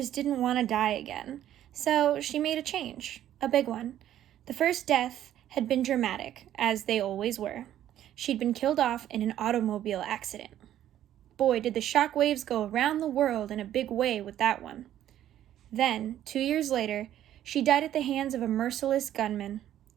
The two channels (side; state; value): left; quieter; 11.8 dB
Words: didn't want to die again, so she made a change, a big one. The first death had been dramatic, as they always were. She'd been killed off in an automobile accident. Boy, did the shockwaves go around the world in a big way with that one. Then, 2 years later, she died at the hands of a merciless gunman.